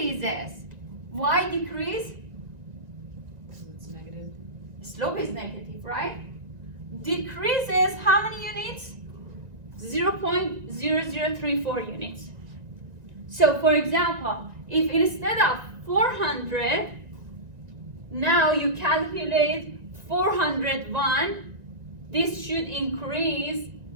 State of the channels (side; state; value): left; late; 1.9 ms